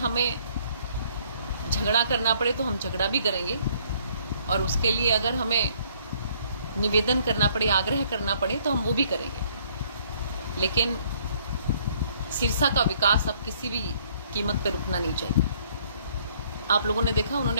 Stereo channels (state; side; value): inverted; both; correlation -0.63